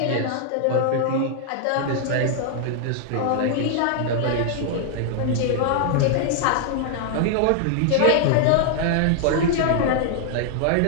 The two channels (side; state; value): both; different; correlation -0.01